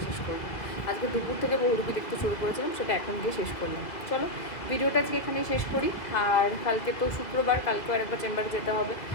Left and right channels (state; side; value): late; right; 2.0 ms